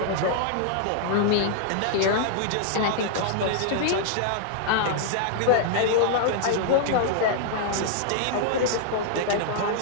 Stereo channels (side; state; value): both; different; correlation -0.01